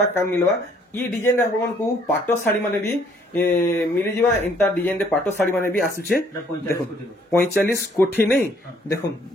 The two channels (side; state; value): both; normal; correlation 0.63